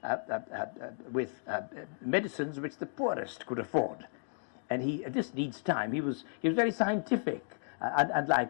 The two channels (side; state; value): right; silent; digital silence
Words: with medicines which the poorest could afford. And this needs time. He was very scientific.